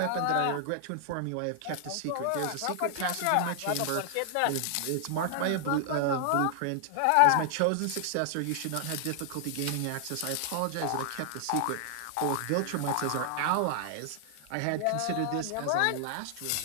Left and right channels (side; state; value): both; different; correlation 0.00